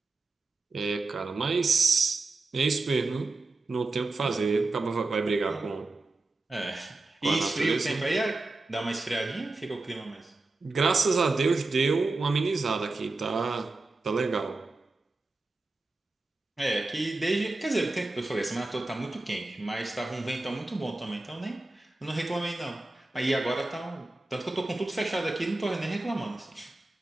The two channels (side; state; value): left; quieter; 3.3 dB